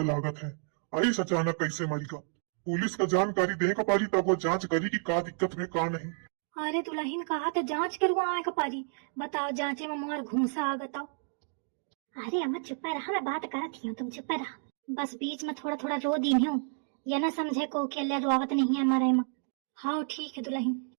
लागत है। ऐस अचानक कैसे मरीगा। पुलिस का जानकारी दे का पारी तब वो जांच करी कि का दिक्कत में का नहीं। अरे दुल्हन कहा तो जांच करवाए का पारी बताओ जांचे में मोर घूसा आ बताओ। अरे अम्मा चुप रहा मैं बात करती हूँ तुम चुप रहा। बस बीच में थोड़ा थोड़ा रो दी हूँ ये न समझे को अकेले रोवत नहीं है हमारे में। हाँ ठीक है दुल्हन।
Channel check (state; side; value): silent; left; 57 dB below the other